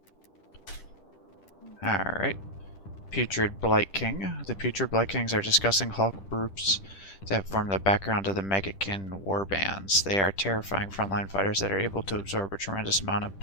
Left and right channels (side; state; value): right; late; 10 ms